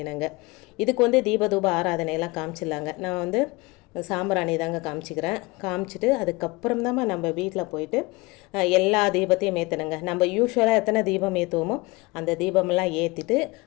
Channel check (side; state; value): right; quieter; 24.0 dB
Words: இதுக்கு தீபதூப ஆராதனையெல்லாம் காமிச்சிடலாங்க. நான் சாம்பிராணி தாங்க காமிச்சிக்கிறேன். காமிச்சிட்டு அதுக்கப்புறம் தான் நம்ம வீட்டில் போயிட்டு எல்லா தீபத்தையும் ஏற்றணுங்க. நம்ம யூஸ்வலாக எத்தனை தீபம் ஏற்றுவோமோ அந்த தீபமெல்லாம் ஏற்றிட்டு